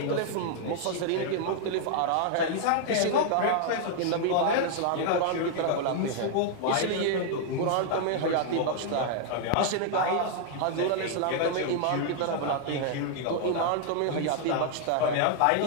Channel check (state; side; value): different; both; correlation 0.00